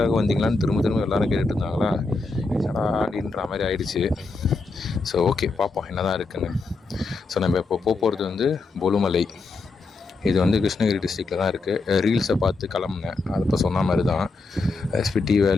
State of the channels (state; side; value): quieter; right; 3.8 dB